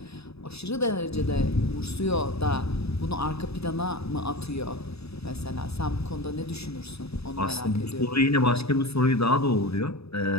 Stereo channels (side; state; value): right; late; 0.79 ms